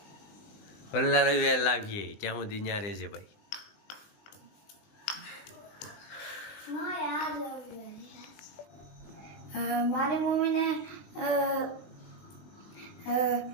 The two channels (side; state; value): right; late; 20 ms